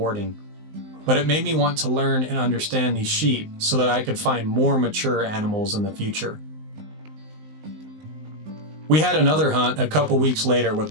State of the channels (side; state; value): left; late; 19 ms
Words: But it made me want to learn and understand these sheep so that I could find more mature animals in the future. We had another hunt a couple weeks later with